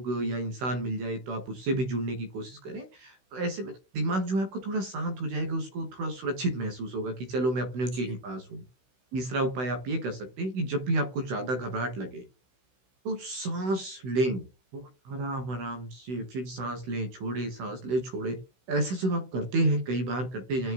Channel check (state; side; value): late; left; 16 ms